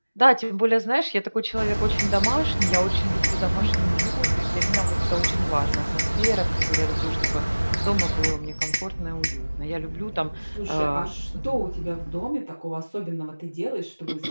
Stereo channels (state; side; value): inverted; both; correlation -1.00